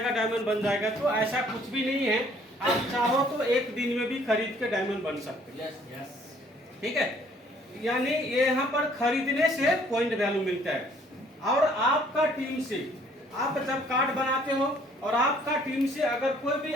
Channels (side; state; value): both; normal; correlation 0.60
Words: डायमंड बन जाएगा। तो ऐसा कुछ भी नहीं है। आप चाहो तो एक दिन में भी खरीद के डायमंड बन सकते हैं। ठीक है, यानी ये यहाँ पर खरीदने से पॉइंट वैल्यू मिलता है। और आपका टीम से आप जब कार्ड बनाते हो और आपका टीम से अगर कोई भी